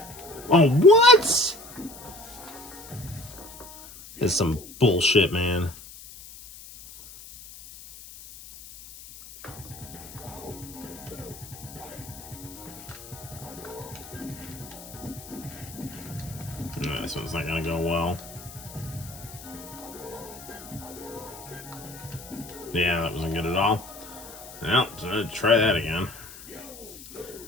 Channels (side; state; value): left; noise; hiss, 16 dB below the sound